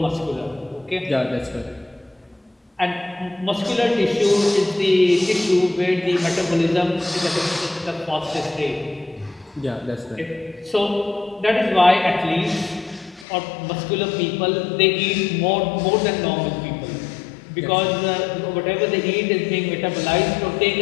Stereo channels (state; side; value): drops out; right; at 13.2 s